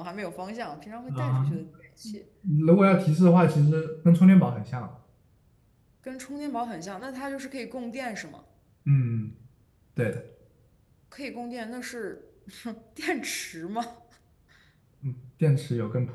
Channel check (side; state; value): both; identical; correlation 1.00